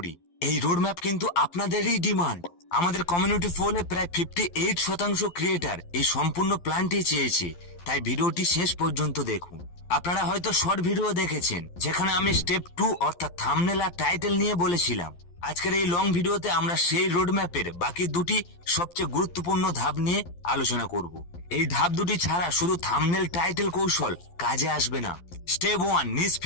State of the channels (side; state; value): right; late; 12 ms